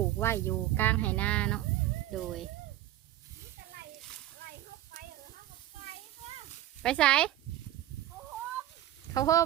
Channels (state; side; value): quieter; left; 13.6 dB